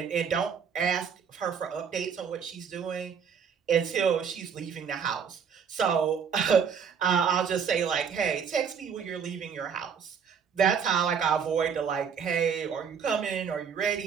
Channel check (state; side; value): quieter; left; 6.9 dB